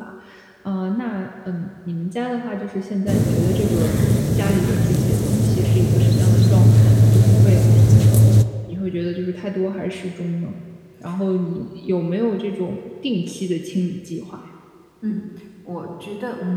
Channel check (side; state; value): both; identical; correlation 1.00